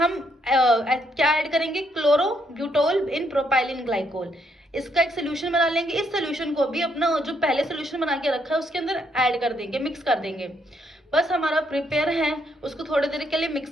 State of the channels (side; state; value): both; normal; correlation 0.74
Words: क्या ऐड करेंगे? क्लोरो ब्यूटोल इन प्रोपाइलिन ग्लाइकोल। इसका एक सोल्यूशन बना लेंगे। इस सोल्यूशन को भी अपना जो पहले सोल्यूशन बना के रखा है उसके अंदर ऐड कर देंगे, मिक्स कर देंगे। बस हमारा प्रिपेयर है। उसको थोड़ी देर के लिए